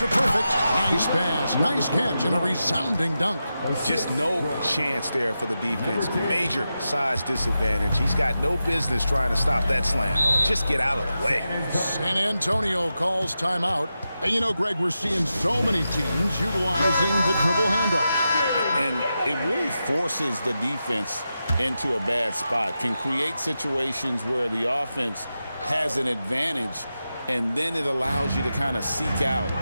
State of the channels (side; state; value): both; inverted; correlation -0.90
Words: Perfect. Nice pass, nice catch, and a resounding dunk. Just no chance there for the defense. Major size disadvantage. He's got no business trying to stop that slam. Just get out of the way. San Antonio calls timeout. And you know, Greg, we're seeing so many teams utilizing the dribble handoff. And it really forces the defense into a bad spot. Can create situations where the offense has an advantage, and then it allows you to kind of seek out